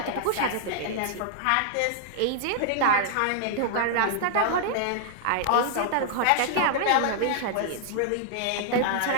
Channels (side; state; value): both; different; correlation -0.01